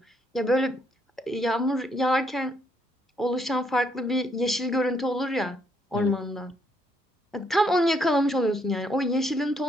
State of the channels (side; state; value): both; normal; correlation 0.72